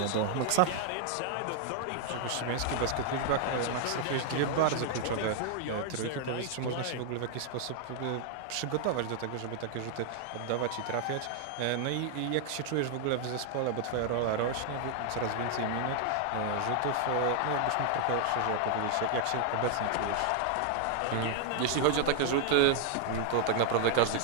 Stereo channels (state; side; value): different; both; correlation 0.00